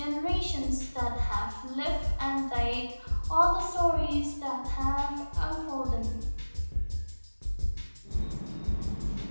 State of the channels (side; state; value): both; inverted; correlation -1.00